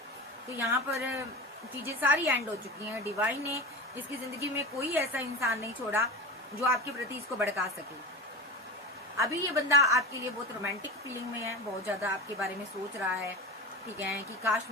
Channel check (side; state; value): both; normal; correlation 0.28